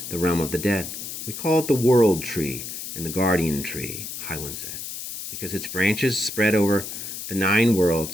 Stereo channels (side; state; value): left; noise; hiss, 8 dB below the sound